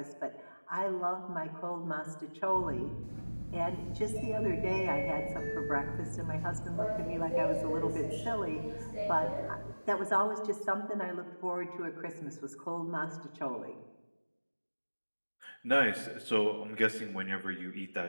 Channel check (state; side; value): inverted; both; correlation -1.00